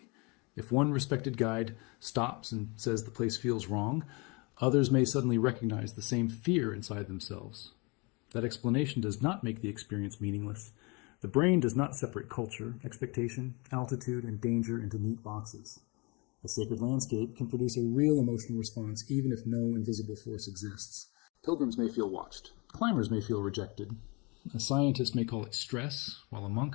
If one respected guide stops and says the place feels wrong, others may suddenly recognize the same fear inside themselves. That explanation does not make the experience meaningless. The brain does not separate culture, expectation, altitude, and danger into neat boxes. A sacred landscape can produce a real emotional response even if no invisible force exists. Pilgrims may feel watched. Climbers may feel rejected. A scientist may call it stress, while a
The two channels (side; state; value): right; quieter; 29.2 dB